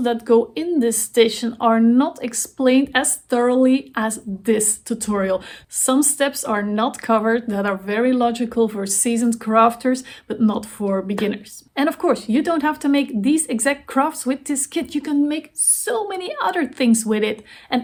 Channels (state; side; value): identical; both; correlation 1.00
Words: that go in this station are not explained as thoroughly as this tutorial. Some steps are not covered that are very logical for seasoned crafters, but not for beginners. And of course, you don't have to make these exact crafts with this kit. You can make so many other things with it